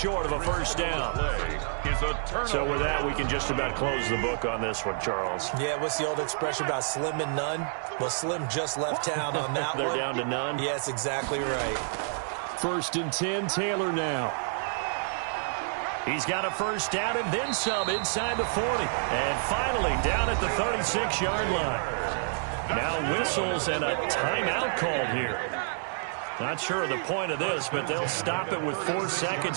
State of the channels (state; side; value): silent; left; digital silence